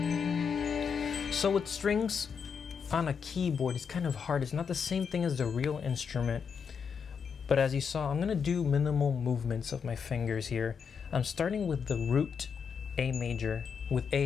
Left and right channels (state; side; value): quieter; right; 6.5 dB